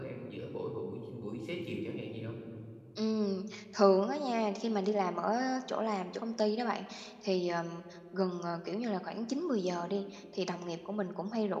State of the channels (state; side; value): identical; both; correlation 1.00